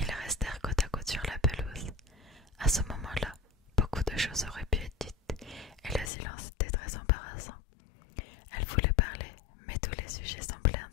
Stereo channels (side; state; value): right; drops out; at 6.1 s